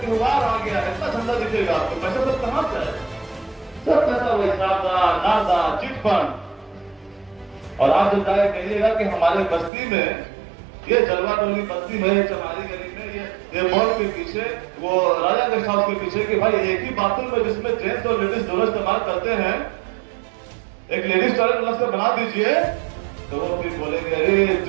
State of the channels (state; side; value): drops out; left; at 9.7 s